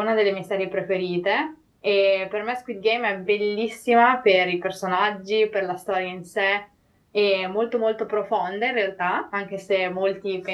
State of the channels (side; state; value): both; identical; correlation 1.00